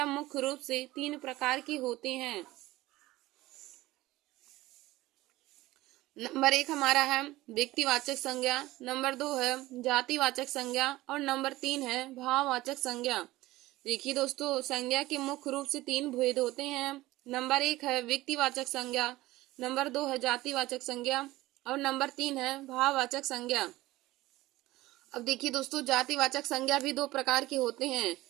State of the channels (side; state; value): left; quieter; 17.9 dB